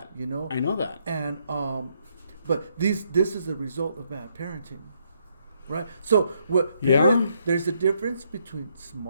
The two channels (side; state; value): both; inverted; correlation -0.74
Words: You I know that. And but this is a result of bad parenting, right? So there's a difference between